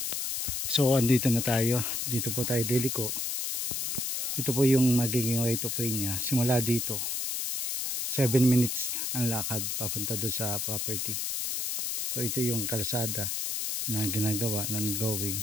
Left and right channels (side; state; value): left; noise; hiss, 1 dB below the sound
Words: So andito na tayo. Dito po tayo liliko. Ito po yung magiging right of way niya. Simula dito 7 minutes ang lakad papunta doon sa property. So ito yung kalsada na ginagawa ng